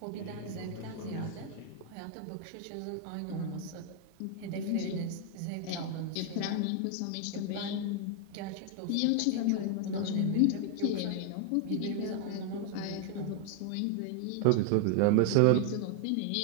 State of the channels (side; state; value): both; different; correlation 0.00